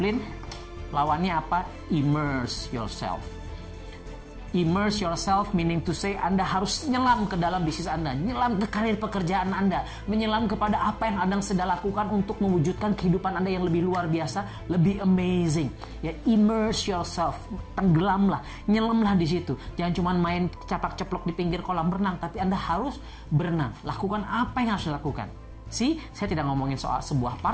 Lawannya apa? Immerse yourself. Immerse yourself meaning to say Anda harus nyelam ke dalam bisnis Anda, nyelam ke karir pekerjaan Anda, menyelam kepada apa yang Anda sedang lakukan untuk mewujudkan kehidupan Anda yang lebih luar biasa, lebih amazing. Ya, immerse yourself, tenggelamlah, nyelamlah di situ. Jangan cuma main capak-ceplok di pinggir kolam renang, tapi Anda harus berenang. Lakukan apa yang harus dilakukan. Saya tidak ngomongin soal sebuah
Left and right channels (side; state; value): both; identical; correlation 1.00